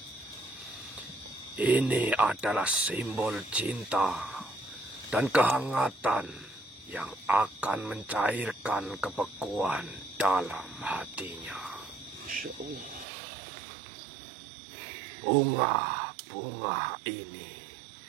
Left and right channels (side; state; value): left; drops out; at 13.1 s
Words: Ini adalah simbol cinta dan kehangatan yang akan mencairkan kebekuan dalam hatinya. Bunga-bunga ini